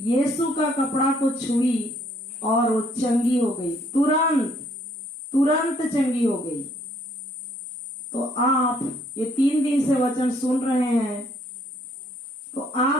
का कपड़ा को छुई और वो चंगी हो गई, तुरंत चंगी हो गई। तो आप ये 3 दिन से वचन सुन रहे हैं, तो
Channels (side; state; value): both; normal; correlation 0.65